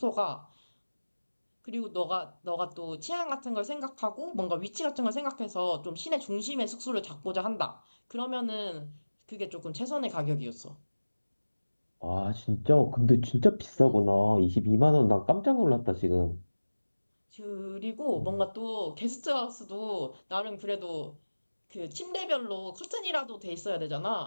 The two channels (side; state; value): both; inverted; correlation -1.00